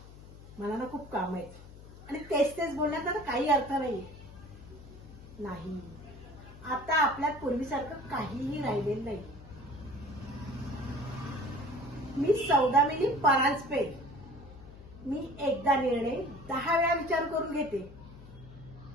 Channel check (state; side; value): noise; left; hum, 18 dB below the sound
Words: मला ना खूप काम आहेत आणि तेच तेच बोलण्यात ना काही अर्थ नाही. आता आपल्यात पूर्वीसारखं काहीही राहिलेलं नाही. मी सौदामिनी परांजपे. मी एकदा निर्णय 10 वेळा विचार करून घेते.